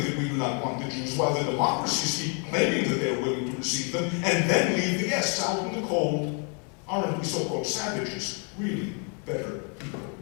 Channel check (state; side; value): quieter; right; 38.7 dB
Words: that we do not want the Jews, while the democracies keep claiming that they are willing to receive them, and then leave the guests out in the cold. Aren't we so-called savages, really better people